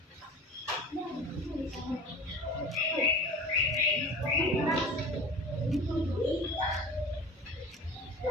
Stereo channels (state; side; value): normal; both; correlation 0.37